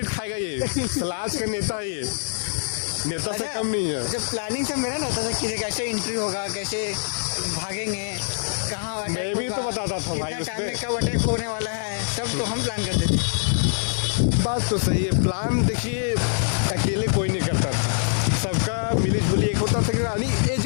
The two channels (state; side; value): silent; right; digital silence